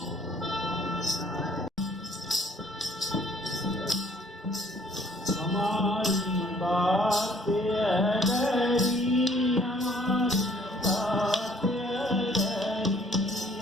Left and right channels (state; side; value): normal; both; correlation 0.60